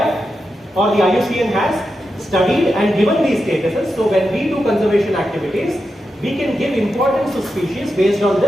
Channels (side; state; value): both; normal; correlation 0.88